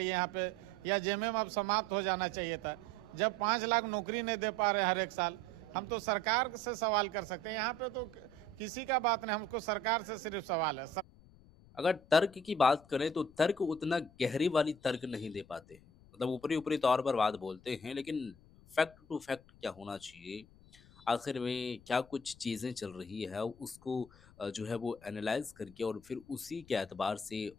यहाँ पे, या जेएमएम अब समाप्त हो जाना चाहिए था। जब 5 लाख नौकरी नहीं दे पा रहे हर एक साल, हम तो सरकार से सवाल कर सकते हैं। यहाँ पे तो किसी का बात नहीं, हमको सरकार से सिर्फ सवाल है। अगर तर्क की बात करें तो तर्क उतना गहरी वाली तर्क नहीं दे पाते हैं। मतलब ऊपरी ऊपरी तौर पर बात बोलते हैं, लेकिन फैक्ट टू फैक्ट क्या होना चाहिए, आखिर में क्या कुछ चीज़ें चल रही है, उसको जो है वो एनालाइज करके और फिर उसी के एतबार से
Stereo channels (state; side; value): noise; left; rumble, 24 dB below the sound